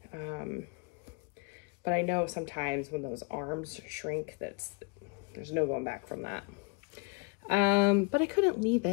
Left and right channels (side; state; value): right; quieter; 32.1 dB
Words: But I know sometimes when those arms shrink, there's no going back from that. But I couldn't leave